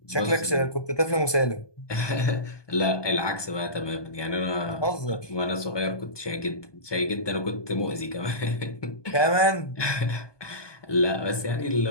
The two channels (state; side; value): late; right; 1.2 ms